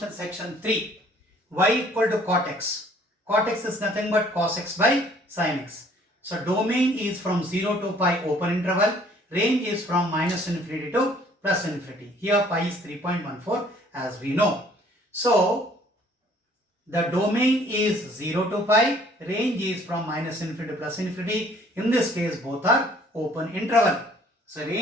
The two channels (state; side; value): normal; both; correlation 0.58